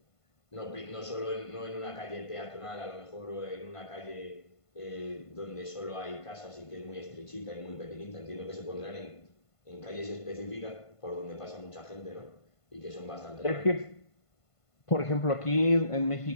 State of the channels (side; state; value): right; late; 1.5 ms